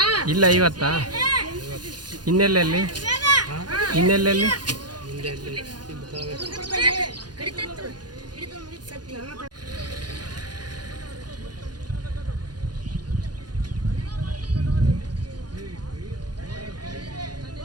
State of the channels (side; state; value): left; late; 0.69 ms